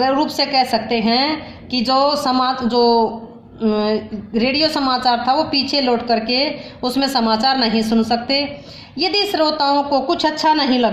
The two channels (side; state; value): both; identical; correlation 1.00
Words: रूप से कह सकते हैं कि जो रेडियो समाचार था वो पीछे लौट करके उसमें समाचार नहीं सुन सकते। यदि श्रोताओं को कुछ अच्छा नहीं